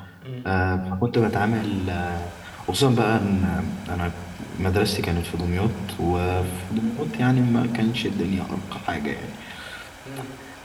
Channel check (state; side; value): identical; both; correlation 1.00